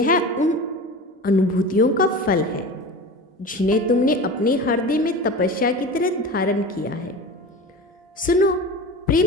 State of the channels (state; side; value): normal; both; correlation 0.32